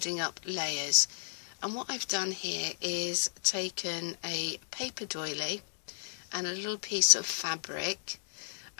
up layers. And what I've done here is taken a paper doily and a little piece of fabric,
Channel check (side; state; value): right; silent; digital silence